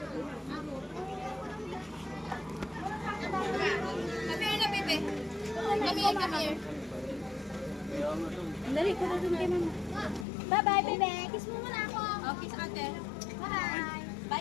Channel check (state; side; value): drops out; right; at 10.2 s